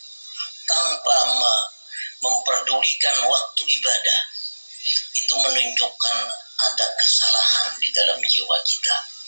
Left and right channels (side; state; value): both; inverted; correlation -1.00